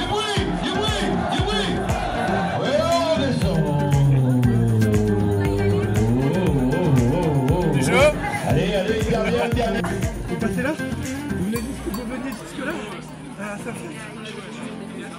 bruit, du bruit, du bruit. Ouais, on descend. Du jeu. Allez, allez, dernière, dernière. Vous passez là? Vous venez jusque là? À faire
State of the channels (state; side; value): identical; both; correlation 1.00